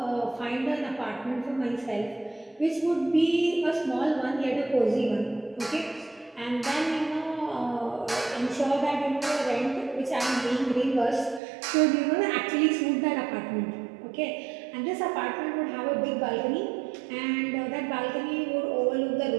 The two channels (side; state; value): left; drops out; at 11.4 s